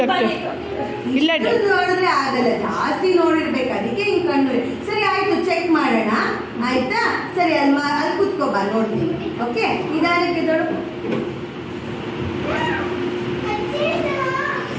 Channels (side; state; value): both; identical; correlation 1.00